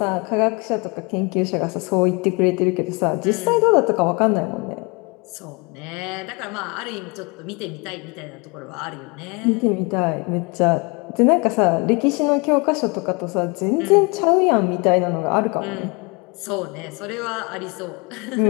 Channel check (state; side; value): quieter; right; 29.2 dB